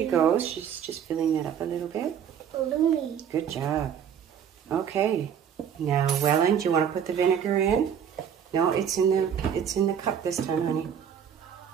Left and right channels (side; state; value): left; quieter; 8.3 dB